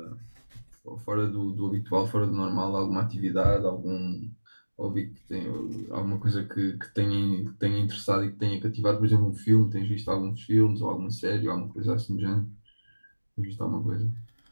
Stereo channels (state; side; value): inverted; both; correlation -1.00